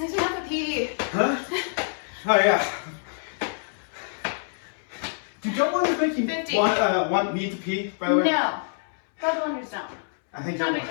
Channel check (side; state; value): right; silent; 61 dB below the other